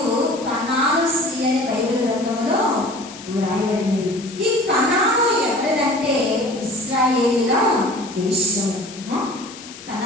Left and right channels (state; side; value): noise; left; hiss, 16 dB below the sound